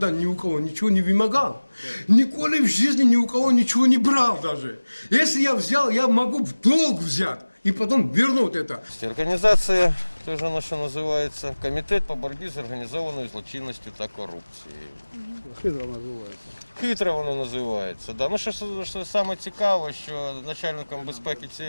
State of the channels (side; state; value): both; inverted; correlation -1.00